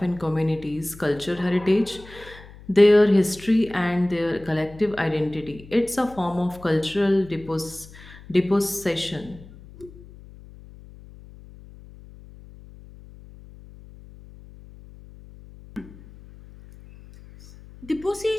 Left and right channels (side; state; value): left; noise; hum, 20 dB below the sound